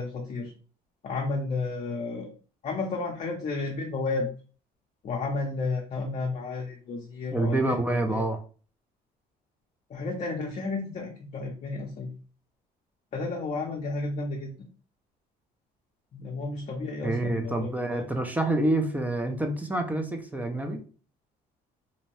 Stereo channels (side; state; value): both; normal; correlation 0.62